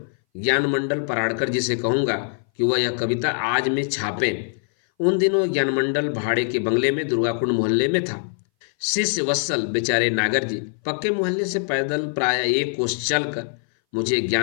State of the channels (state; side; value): silent; right; 60 dB below the other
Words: ज्ञान मंडल पराड़कर जी से कहूंगा कि वह यह कविता आज में छापें। उन दिनों ज्ञान मंडल भाड़े के बंगले में दुर्गाकुंड मोहल्ले में था। शिष्य वत्सल बेचारे नागर जी पक्के मोहल्ले से पैदल प्राय 1 कोस चलकर मुझे